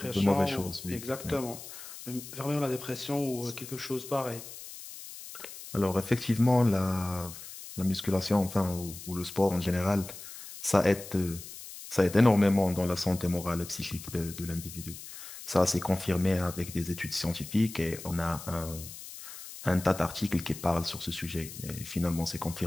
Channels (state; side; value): noise; left; hiss, 13 dB below the sound